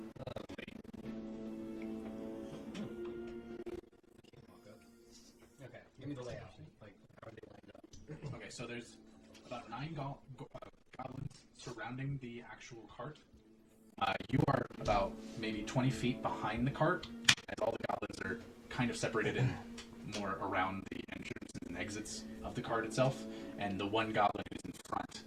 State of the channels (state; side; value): identical; both; correlation 1.00